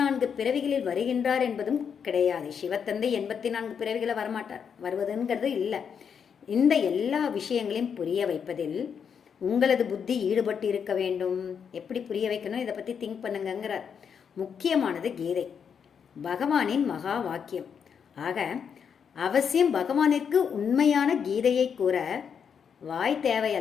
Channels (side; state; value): right; quieter; 7.1 dB